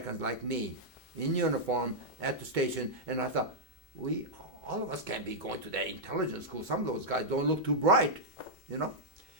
like me in uniform at the station, and I thought, all of us can't be going to that intelligence school. Some of those guys don't look too bright, you know.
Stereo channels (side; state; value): both; normal; correlation -0.06